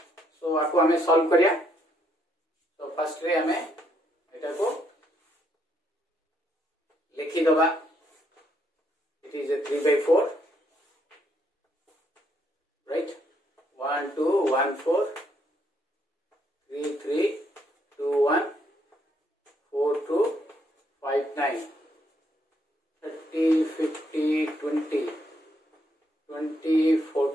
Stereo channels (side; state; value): both; normal; correlation 0.73